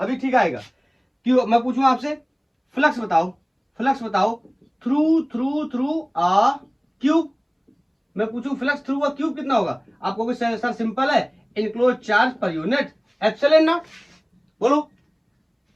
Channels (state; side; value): identical; both; correlation 1.00